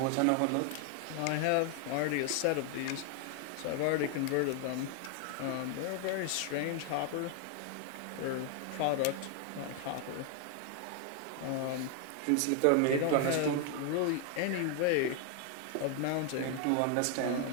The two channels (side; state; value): both; different; correlation 0.00